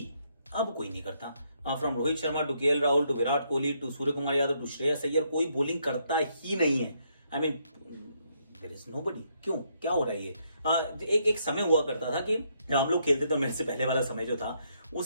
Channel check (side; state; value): both; inverted; correlation -0.74